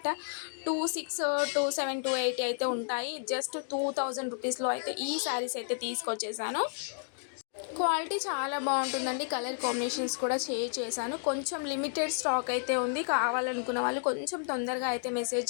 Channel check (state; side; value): silent; right; digital silence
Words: 26, 27, 280 అయితే ఉంటాయి. జస్ట్ 2000 రూపీస్లో అయితే ఈ శారీస్ అయితే తీసుకొచ్చేసాను. క్వాలిటీ చాలా బాగుంటుందండి. కలర్ కాంబినేషన్స్ కూడా చేశాను. కొంచెం లిమిటెడ్ స్టాక్ అయితే ఉంది. కావాలనుకున్న వాళ్ళు కొంచెం తొందరగా అయితే మెసేజ్